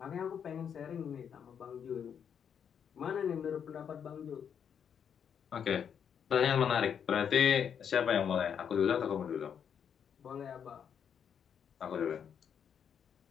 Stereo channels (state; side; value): quieter; right; 7.8 dB